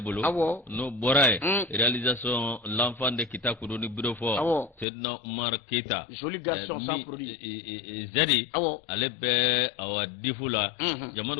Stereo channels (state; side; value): drops out; right; at 4.9 s